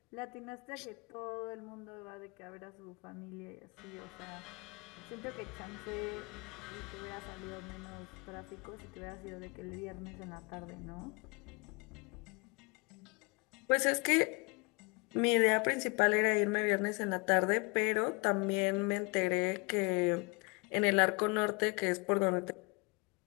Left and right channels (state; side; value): quieter; right; 28.8 dB